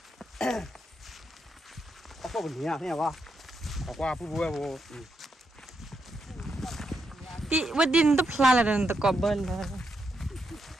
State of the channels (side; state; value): both; normal; correlation 0.82